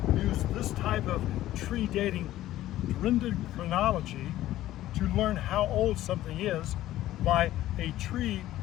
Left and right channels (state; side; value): quieter; right; 14.4 dB